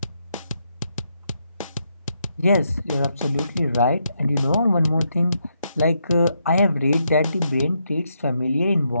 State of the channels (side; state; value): both; inverted; correlation -0.79